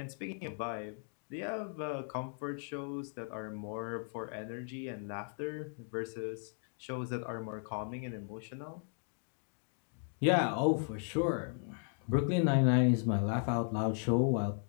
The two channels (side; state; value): right; silent; 54 dB below the other